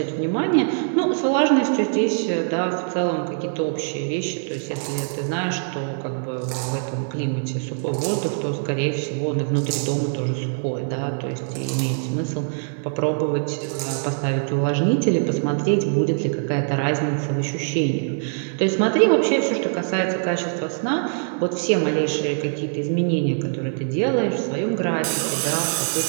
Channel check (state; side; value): silent; left; digital silence